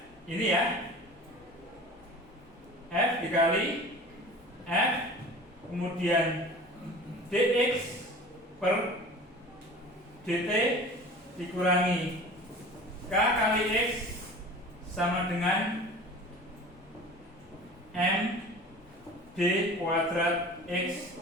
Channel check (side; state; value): both; normal; correlation 0.40